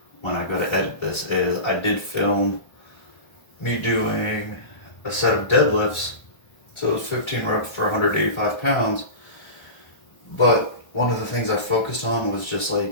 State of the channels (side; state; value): right; late; 1.3 ms